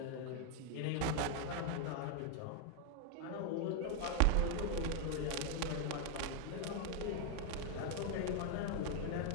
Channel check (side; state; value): both; different; correlation 0.00